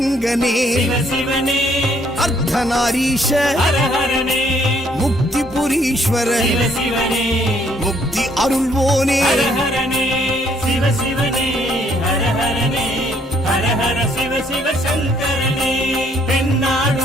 சிவசிவனே, அர்த்தநாரீஷ ஹரஹரனே, முக்திபுரீஸ்வர சிவசிவனே, முக்தி அருள்வோனே. ஹரஹரனே சிவசிவனே, ஹரஹரனே, ஹரஹர சிவ சிவ சங்கரனே,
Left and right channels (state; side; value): normal; both; correlation 0.66